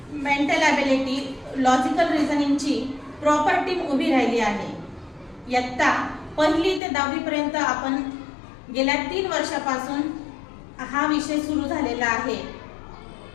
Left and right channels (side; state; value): right; drops out; at 6.8 s